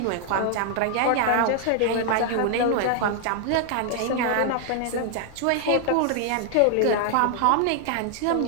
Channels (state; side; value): different; both; correlation 0.00